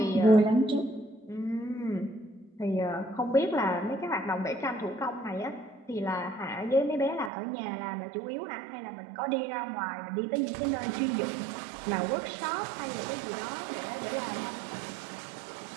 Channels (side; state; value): left; drops out; at 7.3 s